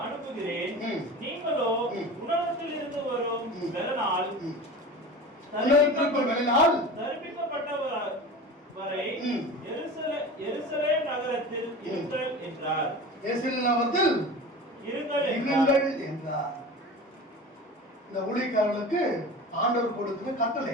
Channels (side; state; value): both; normal; correlation 0.34